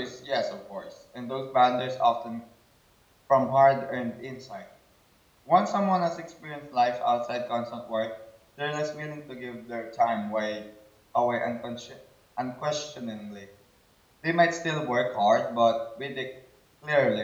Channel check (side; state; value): both; identical; correlation 1.00